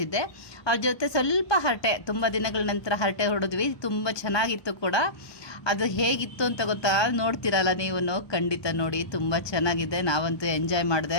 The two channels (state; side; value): late; right; 1.2 ms